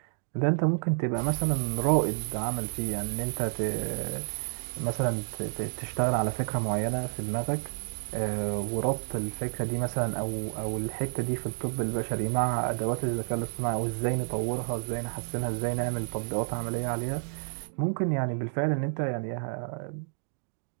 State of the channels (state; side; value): silent; left; digital silence